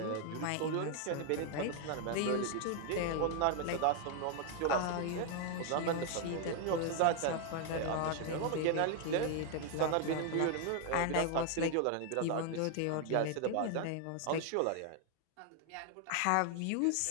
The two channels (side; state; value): both; different; correlation 0.00